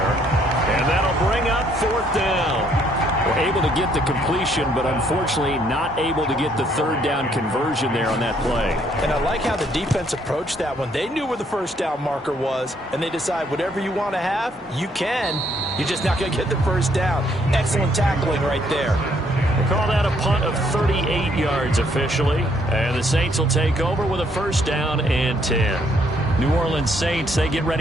And that'll bring up 4th down. We're able to get the completion, but unfortunately not able to get the 3rd down conversion there on that play. And I like how the defense approached that one. They knew where the 1st down marker was, and they decide whatever you want to have, you can. You're just not going to get the 1st down. Excellent tackling right there. They call that a punt of 38 yards officially. And the Saints will take over with a 1st down and 10. New Orleans Saints, they get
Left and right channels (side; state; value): both; normal; correlation 0.68